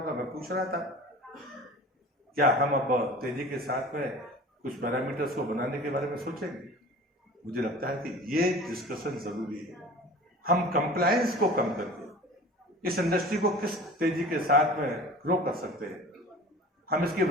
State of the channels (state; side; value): normal; both; correlation 0.40